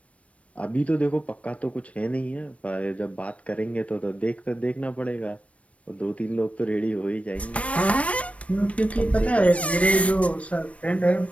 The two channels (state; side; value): late; right; 0.064 ms